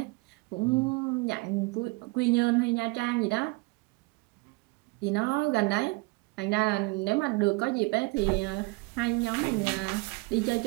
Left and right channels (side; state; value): left; quieter; 26.0 dB